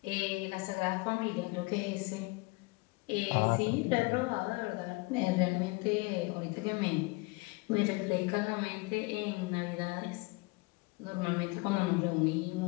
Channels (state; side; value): quieter; right; 26.1 dB